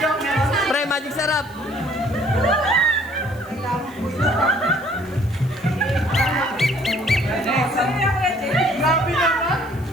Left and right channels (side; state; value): left; noise; hiss, 25 dB below the sound